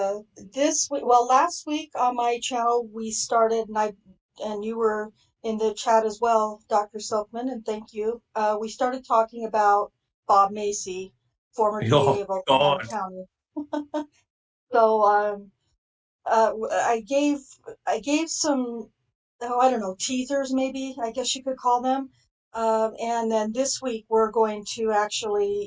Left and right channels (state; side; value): identical; both; correlation 1.00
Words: week on my channel we started, and you were in the chat as well, Dr. Silkman, and thank you. We started talking about Bob Macy, former DA of Oklahoma County. So I gave some, I don't know, teasers maybe, I guess you could call them. And then this week we're going to